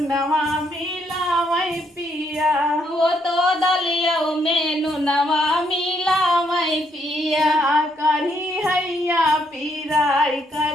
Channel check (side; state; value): both; normal; correlation 0.73